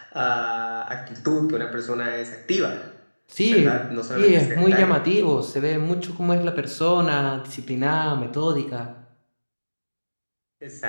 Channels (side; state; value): both; inverted; correlation -1.00